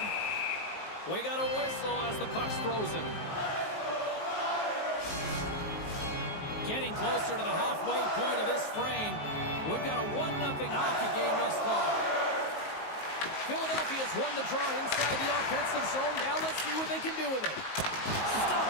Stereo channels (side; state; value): right; late; 19 ms